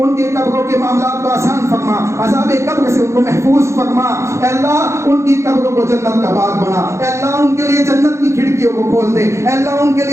قبروں کے معاملات کو آسان فرما، عذاب قبر سے ان کو محفوظ فرما۔ اے اللہ ان کی قبروں کو جنت کا باغ بنا، اے اللہ ان کے لیے جنت کی کھڑکیوں کو کھول دے، اے اللہ ان کے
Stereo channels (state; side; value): late; left; 0.14 ms